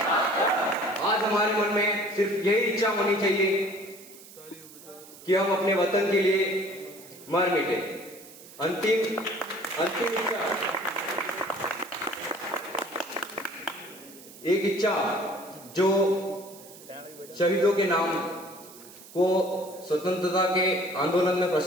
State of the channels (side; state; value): right; noise; hiss, 19 dB below the sound